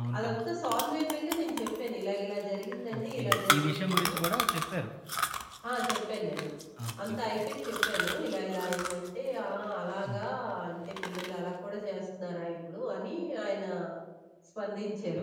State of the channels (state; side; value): identical; both; correlation 1.00